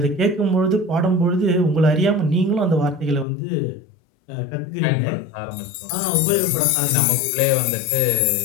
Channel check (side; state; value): right; drops out; at 3.2 s